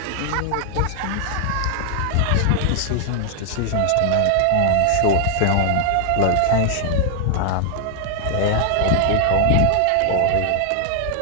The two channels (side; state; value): both; different; correlation 0.00